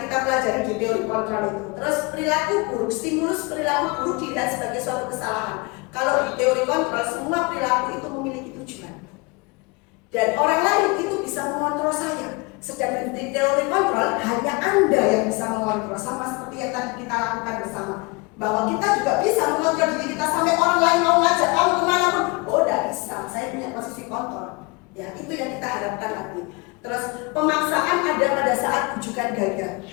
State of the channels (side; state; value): right; quieter; 27.6 dB